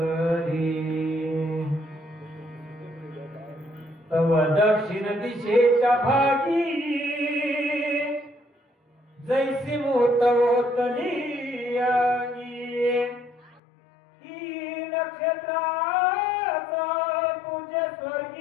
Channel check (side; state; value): right; drops out; at 13.6 s